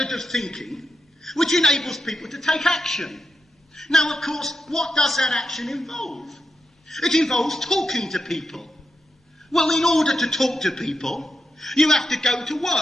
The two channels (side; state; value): both; normal; correlation 0.86